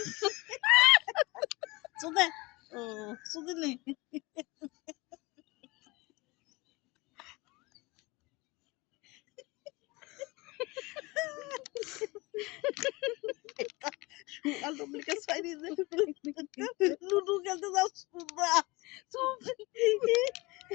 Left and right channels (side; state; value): right; quieter; 23.8 dB